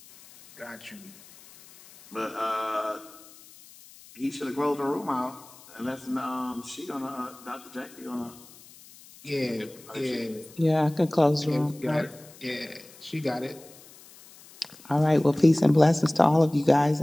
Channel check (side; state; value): left; noise; hiss, 22 dB below the sound